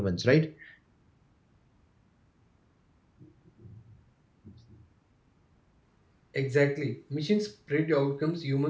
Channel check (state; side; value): identical; both; correlation 1.00